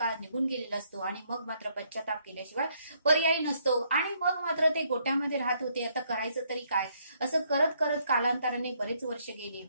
निघून गेलेला असतो आणि मग मात्र पश्चाताप केल्याशिवाय पर्याय नसतो. आणि मग मात्र ते गोट्यामध्ये राहत होते. आता करायचं तरी काय, असं करत करत कालांतराने बरेच वर्ष गेली.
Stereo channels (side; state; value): both; inverted; correlation -0.70